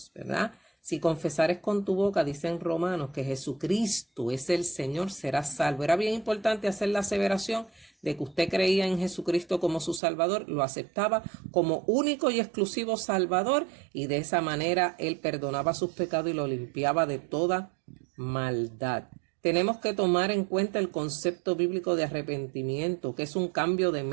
¿verdad? Si confesares con tu boca, dicen Romanos, que Jesucristo es el Señor, serás salvo. Era bien importante hacer la aseveración de que usted creía en Jesucristo como su Salvador, lo aceptaba como único y exclusivo Salvador y de esa manera Él perdonaba sus pecados y lo limpiaba de toda maldad. Tenemos que tomar en cuenta el concepto bíblico de arrepentimiento, que es un cambio de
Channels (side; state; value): left; drops out; at 10.0 s